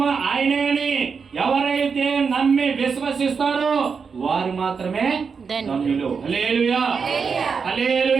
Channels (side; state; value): left; quieter; 5.7 dB